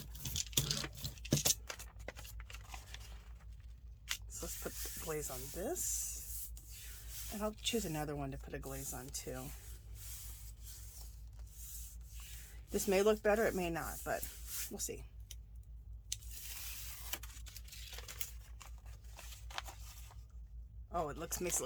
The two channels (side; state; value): both; identical; correlation 1.00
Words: So let's put the glaze on this. And I'll choose another one to put a glaze on too. This may look better, it may not, but we'll see. Oh, makes it